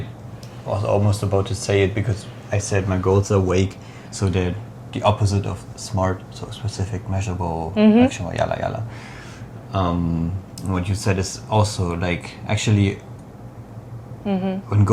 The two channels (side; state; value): both; identical; correlation 1.00